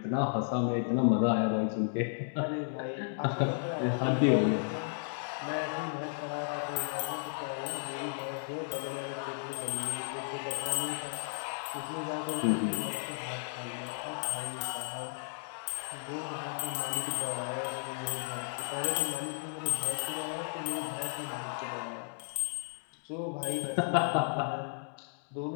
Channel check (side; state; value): right; silent; digital silence